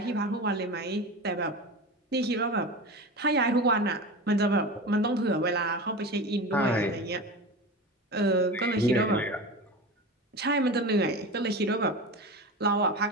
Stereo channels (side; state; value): both; normal; correlation 0.28